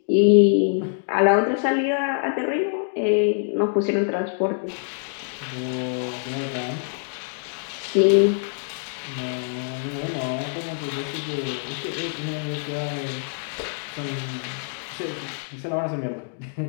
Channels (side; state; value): right; silent; digital silence